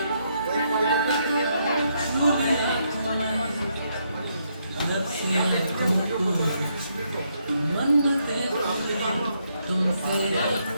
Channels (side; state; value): both; inverted; correlation -0.76